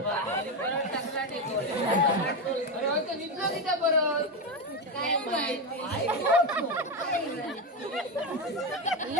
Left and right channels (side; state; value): both; normal; correlation 0.12